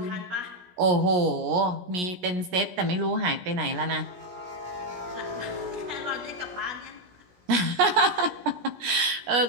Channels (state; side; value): late; left; 17 ms